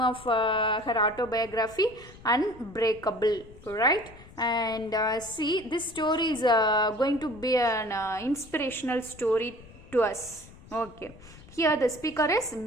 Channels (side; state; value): left; noise; rumble, 21 dB below the sound